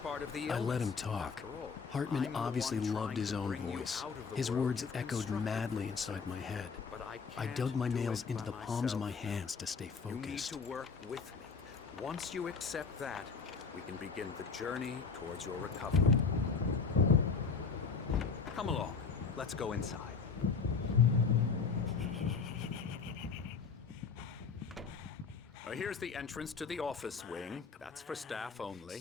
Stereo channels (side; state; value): right; quieter; 5.2 dB